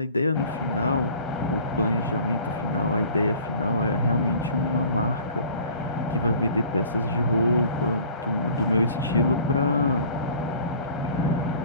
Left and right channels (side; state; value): both; inverted; correlation -0.47